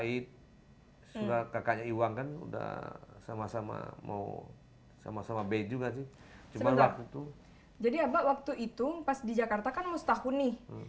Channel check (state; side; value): identical; both; correlation 1.00